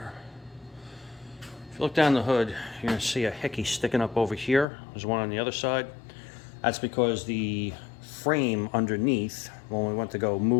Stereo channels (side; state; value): right; drops out; at 4.7 s